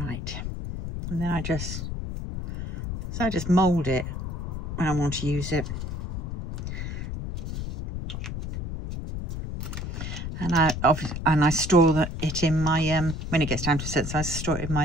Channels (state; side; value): noise; left; rumble, 5 dB below the sound